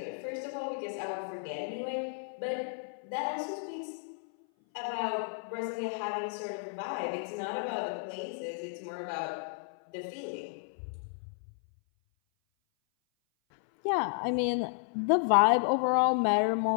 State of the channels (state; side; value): silent; right; 56 dB below the other